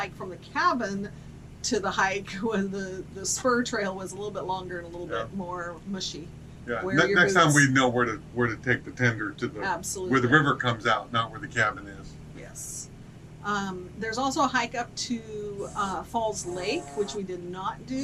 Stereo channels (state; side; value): identical; both; correlation 1.00